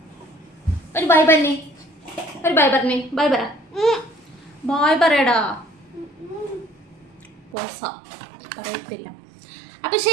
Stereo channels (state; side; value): drops out; left; at 7.6 s